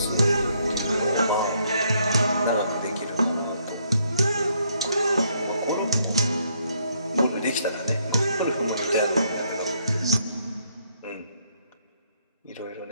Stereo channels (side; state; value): both; inverted; correlation -0.71